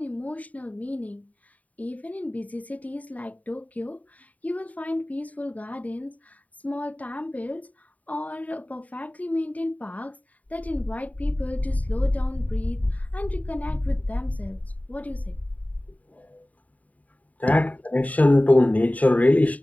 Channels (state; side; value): late; right; 0.072 ms